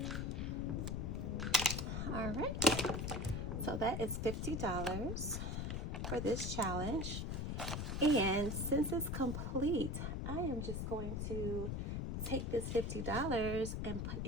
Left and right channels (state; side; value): noise; left; rumble, 2 dB below the sound